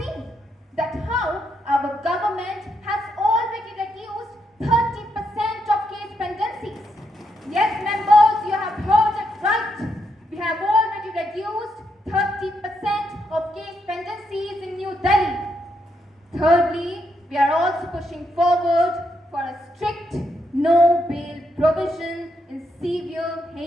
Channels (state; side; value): normal; both; correlation 0.79